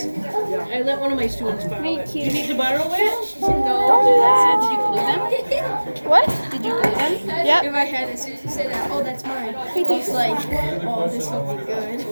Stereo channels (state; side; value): inverted; both; correlation -1.00